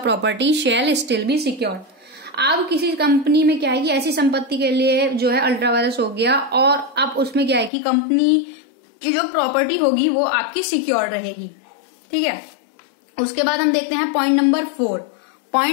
shall still be secured. अब किसी कंपनी में क्या है कि ऐसी संपत्ति के लिए जो है अल्ट्रा वायरस हो गया और अब उसमें क्या है कि कंपनी की जो प्रॉपर्टी होगी वो आपकी सिक्योर रहेगी। ठीक है, उसके बाद हम देखते हैं पॉइंट नंबर 4।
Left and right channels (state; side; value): drops out; right; at 7.7 s